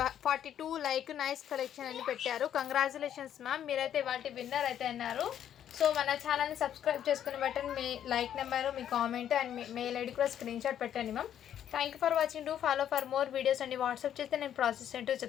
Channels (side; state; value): right; quieter; 10.1 dB